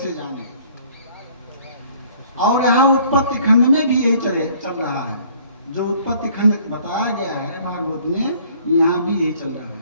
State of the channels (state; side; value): inverted; both; correlation -0.57